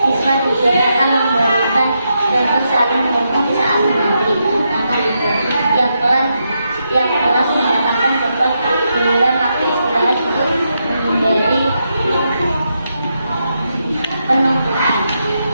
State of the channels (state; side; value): inverted; both; correlation -0.83